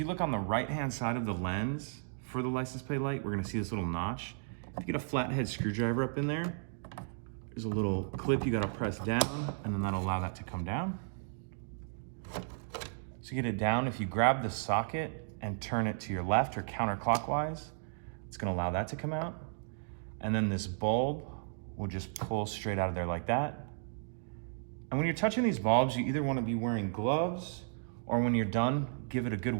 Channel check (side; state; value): left; silent; digital silence